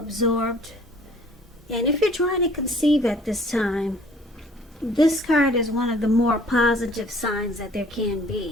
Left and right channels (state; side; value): normal; both; correlation 0.55